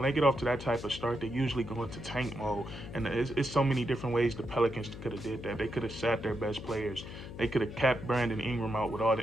start, they usually go into tank mode. And it's so many different ways the Pelicans could have did that. They could have sat their best players. They could have kept Brandon Ingram out with all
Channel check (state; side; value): noise; left; hum, 11 dB below the sound